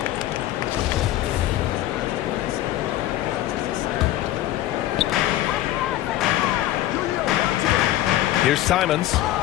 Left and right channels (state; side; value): quieter; right; 14.4 dB